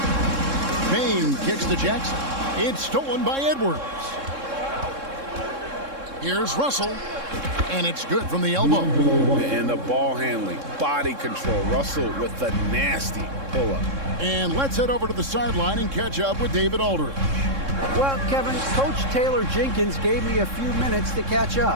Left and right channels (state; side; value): late; left; 3.7 ms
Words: Payne kicks to Jackson. It's stolen by Edwards. Here's Russell. And it's good from the elbow. And the ball handling, body control. Russell with the nasty pull-up. And let's head over to the sideline and catch up with David Aldridge. Well, Kevin, Coach Taylor Jenkins gave me a few minutes to catch